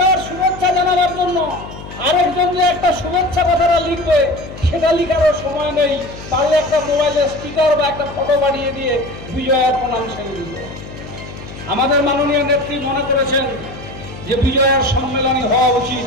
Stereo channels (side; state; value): left; noise; hum, 14 dB below the sound